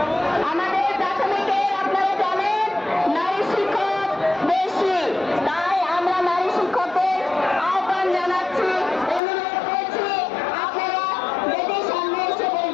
আমাদের প্রাথমিকে আপনারা জানেন নারী শিক্ষক বেশি, তাই আমরা নারী শিক্ষকদের আহ্বান জানাচ্ছি, অনুরোধ করছি আপনারা বেদের সামনে এসে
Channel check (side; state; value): right; drops out; at 9.2 s